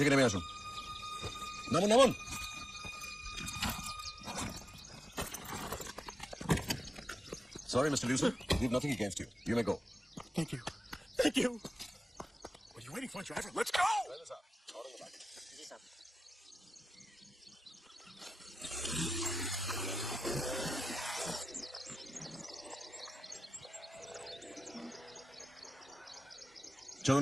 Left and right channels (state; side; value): normal; both; correlation 0.93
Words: নেমে আসুন। নামুন, নামুন। Sorry, Mr. Lucer. We've nothing against you. You may go. Thank you. Thank you. What are you waiting for, driver? Let's go!